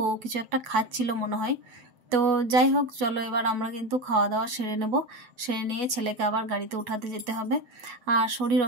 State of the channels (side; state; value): left; late; 8.1 ms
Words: কিছু একটা খাচ্ছিল মনে হয়। তো যাই হোক, চলো এবার আমরা কিন্তু খাওয়া দাওয়া সেরে নেব। সেরে নিয়ে ছেলেকে আবার গাড়িতে উঠাতে যেতে হবে। আর শরীর